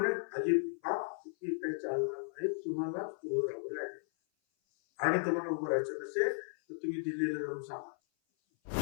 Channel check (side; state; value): right; silent; 54 dB below the other